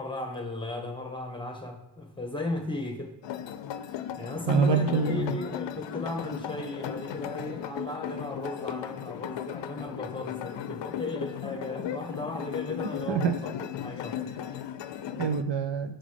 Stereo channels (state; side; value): normal; both; correlation 0.23